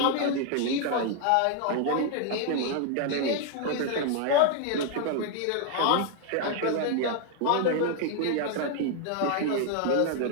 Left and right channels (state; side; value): different; both; correlation 0.00